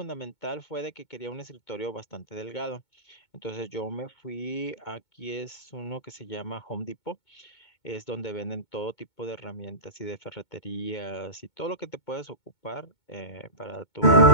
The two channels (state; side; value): late; right; 2.2 ms